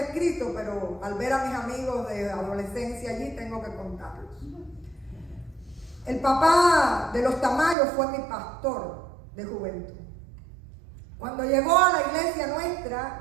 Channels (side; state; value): left; drops out; at 7.8 s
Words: pero al ver a mis amigos de adolescencia allí, tengo que contarlos. El papá de los Tamayos fue mi pastor de juventud. Cuando llegó a la iglesia